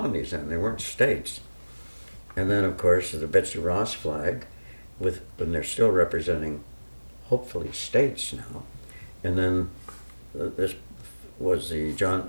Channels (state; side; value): inverted; both; correlation -1.00